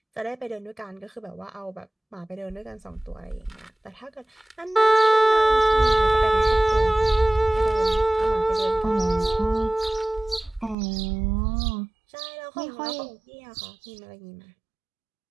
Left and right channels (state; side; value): drops out; left; at 10.8 s